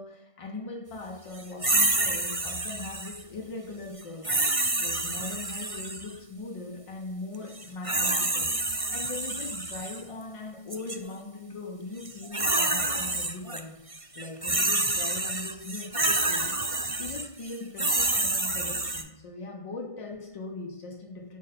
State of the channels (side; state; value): right; late; 1.6 ms